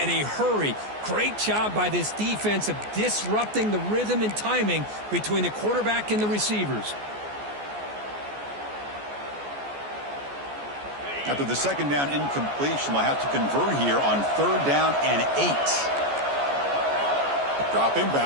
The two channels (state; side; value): late; left; 14 ms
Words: a hurry. Great job by this defense of disrupting the rhythm and timing between the quarterback and the receivers. After the second down incompletion, they'll have to convert here on third down and 8. Dropping